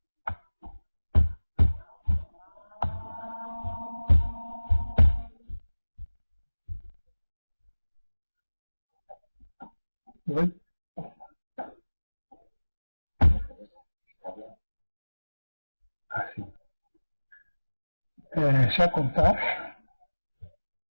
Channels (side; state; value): both; inverted; correlation -1.00